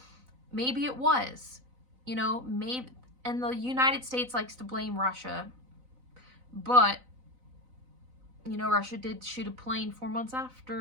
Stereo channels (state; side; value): late; left; 4.0 ms